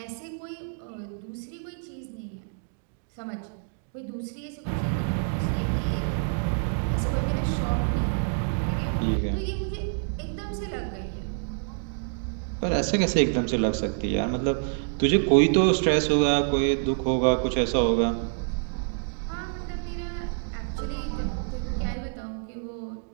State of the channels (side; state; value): left; silent; digital silence